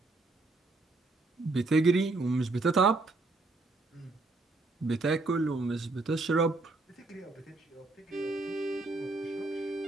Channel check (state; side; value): quieter; left; 3.3 dB